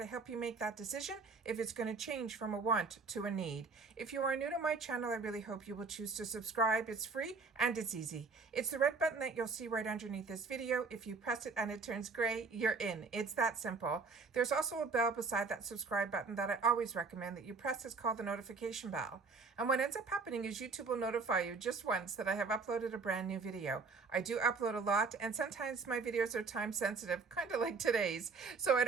help you make that decision if it's going to change from a want to a need. If you are new to my channel, I really hope you will choose to subscribe. It's free and it's easy. It's the red button that you'll see right underneath this video. If you press it and it turns gray, you're in. It's that simple. There's also a bell beside that subscribe button that I always recommend that you press. It's called the notification bell. And what ends up happening is YouTube will notify you just once that I have uploaded a brand new video. I do upload a lot, and sometimes my videos are time sensitive, kind of like today's, so I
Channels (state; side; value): quieter; left; 4.5 dB